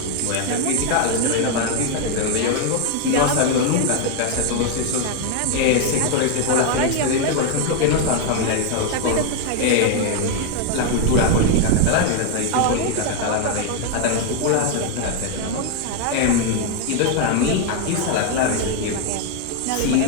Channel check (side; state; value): both; different; correlation 0.01